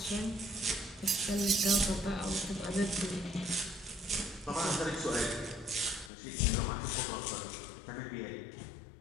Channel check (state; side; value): drops out; right; at 6.1 s